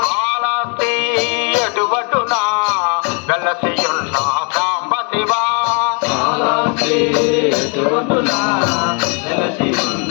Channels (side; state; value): right; quieter; 35.9 dB